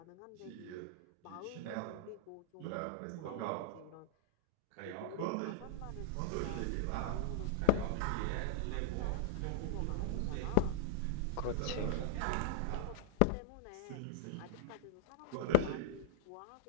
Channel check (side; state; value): both; different; correlation -0.01